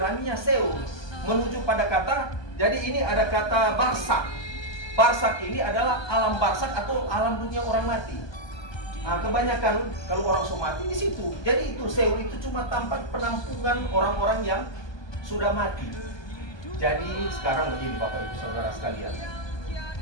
Seul menuju pada kata, jadi ini ada kata barsak. Barsak ini adalah alam barsak atau alam dunia orang mati. Nah, kebanyakan kalau orang mati di situ. Jadi itu Seul itu cuma tempat penampungan orang-orang yang sudah mati. Jadi sekarang begini Bapak Ibu Saudara sekalian.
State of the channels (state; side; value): late; right; 1.2 ms